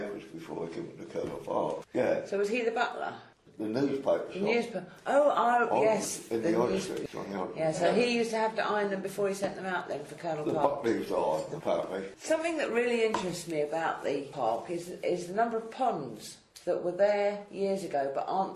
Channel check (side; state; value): both; identical; correlation 1.00